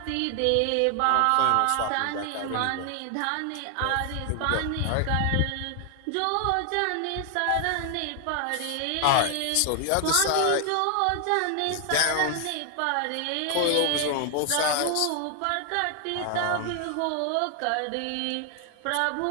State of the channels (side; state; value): both; different; correlation 0.00